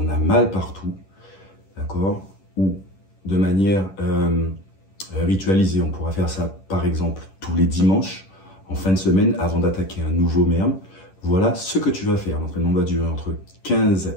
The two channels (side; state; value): right; late; 10 ms